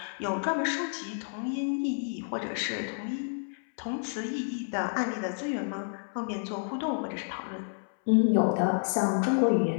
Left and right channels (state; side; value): silent; right; 58 dB below the other